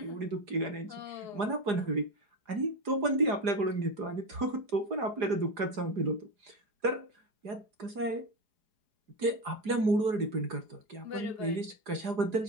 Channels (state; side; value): late; left; 4.8 ms